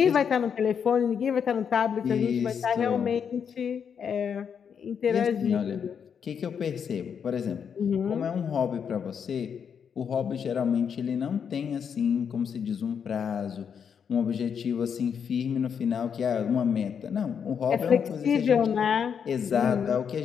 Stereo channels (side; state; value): right; quieter; 7.2 dB